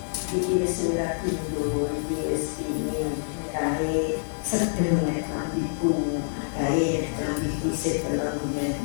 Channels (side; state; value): right; silent; 56 dB below the other